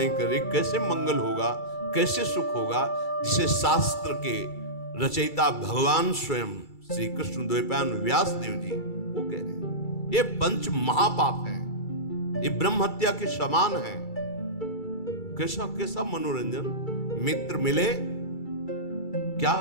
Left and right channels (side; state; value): right; late; 2.3 ms